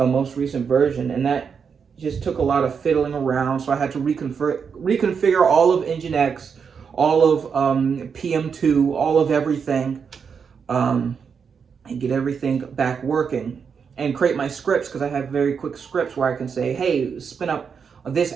most recent version, and that just took a lot of fiddling around. So I had to reconfigure all of Nginx, all of PM2, all of everything, and get everything back working, and create my scripts, because I have very quick scripts where I can say, hey, spin up this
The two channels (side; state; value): left; quieter; 6.4 dB